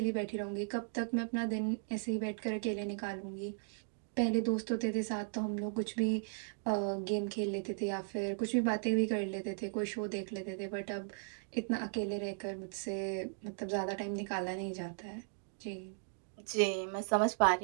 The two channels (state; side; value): silent; left; digital silence